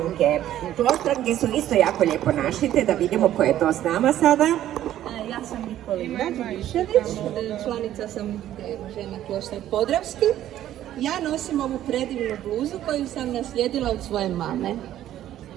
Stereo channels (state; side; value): quieter; left; 12.4 dB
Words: Kloštranke su isto jako lijepo našite, da vidimo ko je to s nama sada. Ja sam Nikolina Đurišević, članica sam žena Kloštar Podravski. Ja nosim ovu predivnu bluzu koju sam naslijedila od svoje mame.